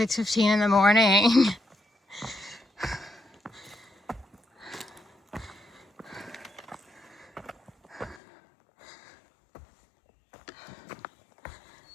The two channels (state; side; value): drops out; right; at 8.2 s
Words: in the morning.